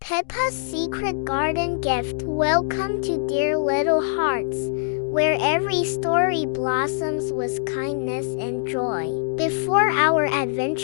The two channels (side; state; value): right; silent; digital silence